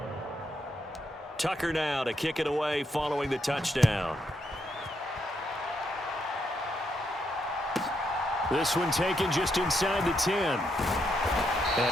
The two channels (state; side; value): normal; both; correlation 0.79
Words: Tucker now to kick it away following the touchdown. This one taken just inside the 10.